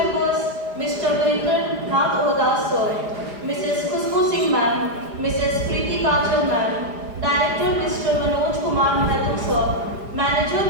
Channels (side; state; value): left; late; 4.9 ms